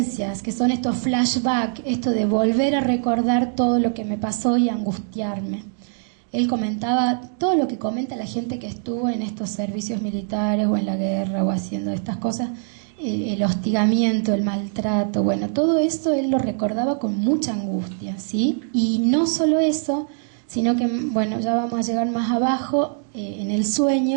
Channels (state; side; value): silent; left; digital silence